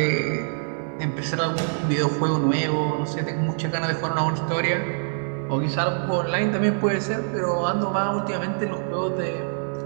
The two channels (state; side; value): silent; left; digital silence